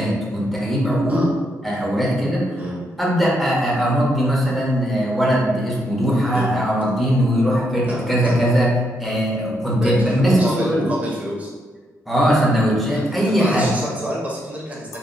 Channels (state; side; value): normal; both; correlation 0.78